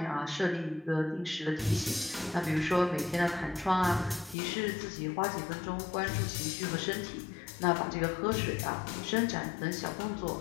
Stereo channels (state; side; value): drops out; right; at 4.4 s